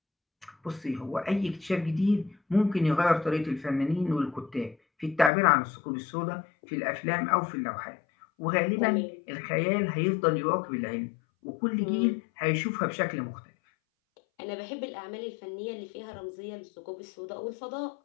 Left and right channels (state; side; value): drops out; right; at 5.3 s